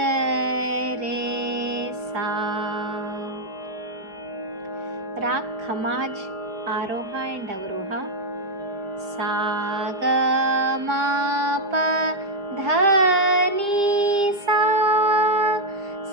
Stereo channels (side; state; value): left; late; 5.1 ms